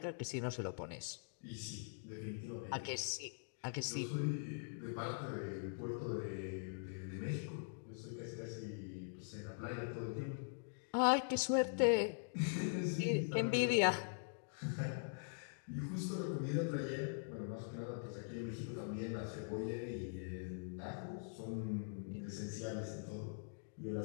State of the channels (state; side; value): silent; right; digital silence